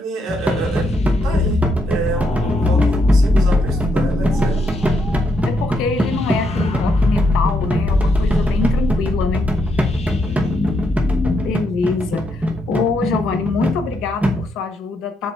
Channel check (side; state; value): both; normal; correlation 0.78